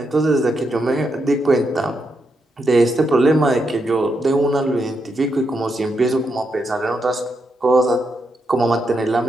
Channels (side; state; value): both; normal; correlation 0.82